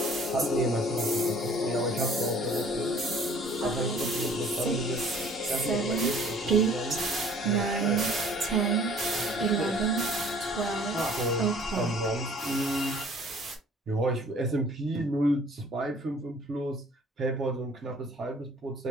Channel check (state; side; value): normal; both; correlation 0.53